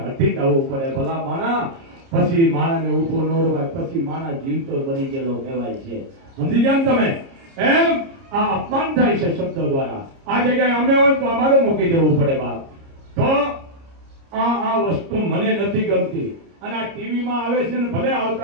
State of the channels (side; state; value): left; late; 30 ms